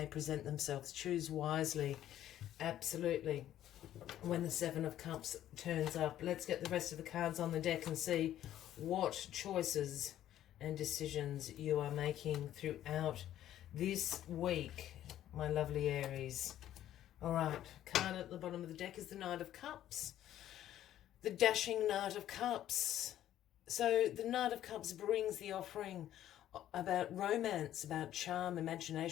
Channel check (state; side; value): quieter; right; 12.2 dB